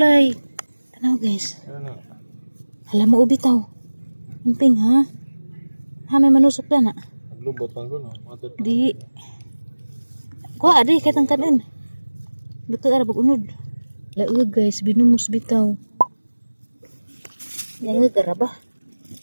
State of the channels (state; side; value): inverted; both; correlation -1.00